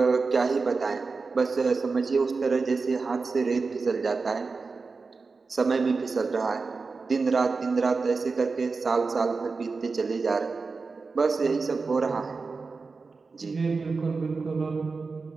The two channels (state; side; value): quieter; left; 4.3 dB